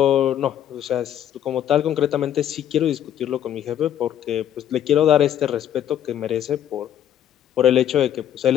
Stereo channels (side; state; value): right; quieter; 10.6 dB